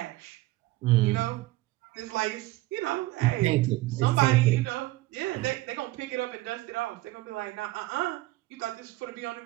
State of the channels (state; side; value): quieter; left; 18.5 dB